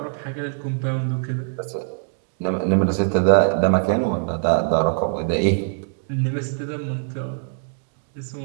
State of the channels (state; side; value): silent; left; 64 dB below the other